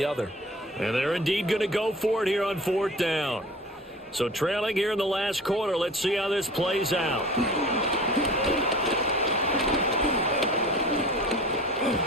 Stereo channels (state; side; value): normal; both; correlation 0.40